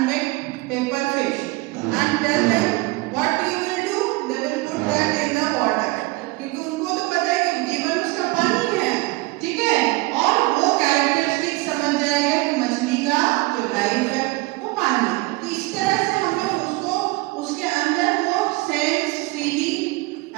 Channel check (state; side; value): quieter; left; 22.7 dB